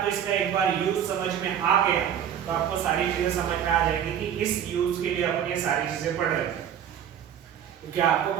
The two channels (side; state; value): left; quieter; 9.3 dB